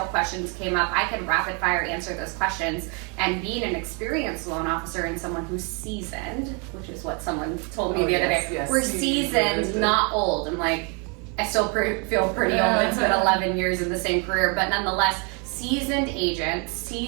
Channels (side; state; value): left; quieter; 34.8 dB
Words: questions came up, I could rapid fire answer those questions. And being an experienced loan officer and someone who's seasoned, which is what someone told me the other day, yes, we're seasoned, not old. I'm like, I still feel pretty old. It's been 11 years in the same career, but nonetheless, seasoned agents,